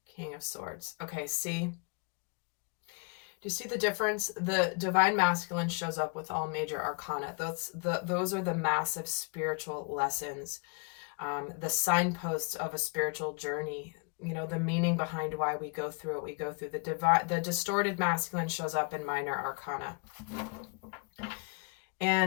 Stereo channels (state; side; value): quieter; right; 35.8 dB